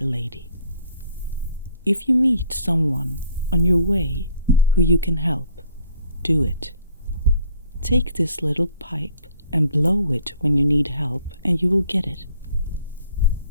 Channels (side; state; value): both; inverted; correlation -0.60